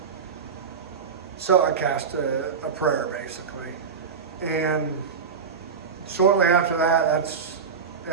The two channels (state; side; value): quieter; left; 5.9 dB